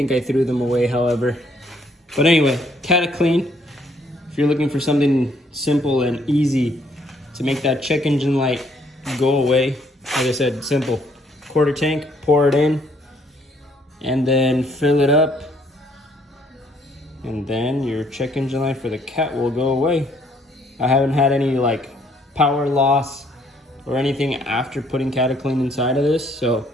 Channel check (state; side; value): normal; both; correlation 0.66